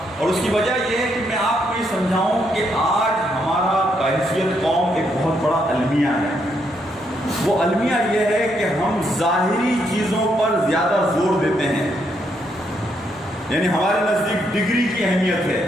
اور اس کی وجہ یہ ہے کہ میں آپ کو یہ سمجھاؤں کہ آج ہمارا بحیثیت قوم ایک بہت بڑا المیہ ہے. وہ المیہ یہ ہے کہ ہم ظاہری چیزوں پر زیادہ زور دیتے ہیں. یعنی ہمارے نزدیک ڈگری کی اہمیت ہے,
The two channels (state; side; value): normal; both; correlation 0.76